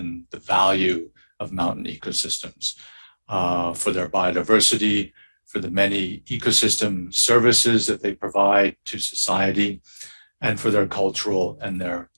the value of mountain ecosystems for their biodiversity, for the many ecosystem services that they provide to society, and for their cultural and their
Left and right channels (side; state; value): both; inverted; correlation -1.00